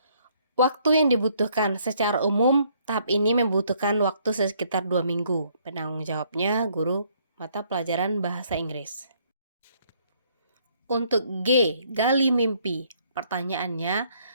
Waktu yang dibutuhkan secara umum, tahap ini membutuhkan waktu sekitar 2 minggu. Penanggung jawabnya guru mata pelajaran bahasa Inggris. Untuk G, gali mimpi. Pertanyaannya,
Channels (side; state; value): both; inverted; correlation -0.66